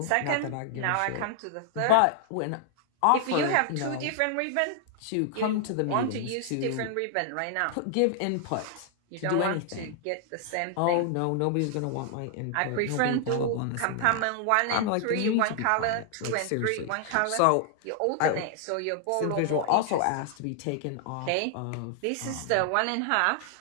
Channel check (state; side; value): different; both; correlation 0.00